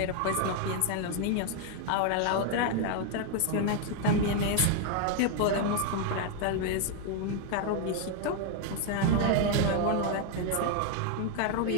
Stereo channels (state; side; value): different; both; correlation 0.00